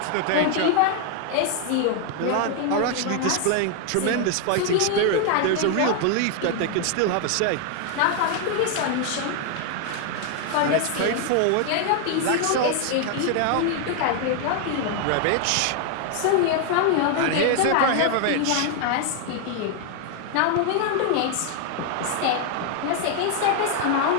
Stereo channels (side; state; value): both; different; correlation 0.00